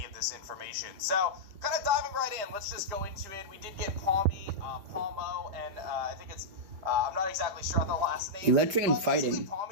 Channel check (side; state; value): left; late; 5.1 ms